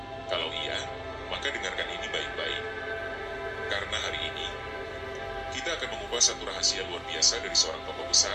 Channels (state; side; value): identical; both; correlation 1.00